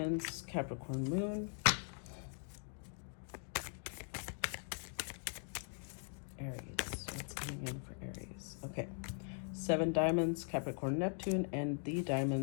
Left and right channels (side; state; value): right; silent; 51 dB below the other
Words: Capricorn Moon. Aries, what's coming in for Aries? Okay, 7 diamonds, Capricorn Neptune, and the